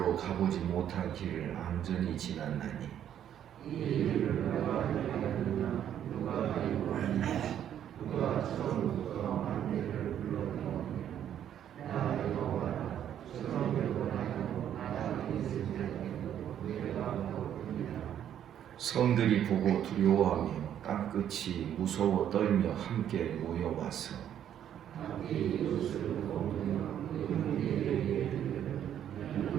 가보지 못한 길을 안전히 지났나니 성들이 보고 두려워하며 땅끝이 무서워 떨며 함께 모여와서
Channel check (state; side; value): quieter; left; 10.1 dB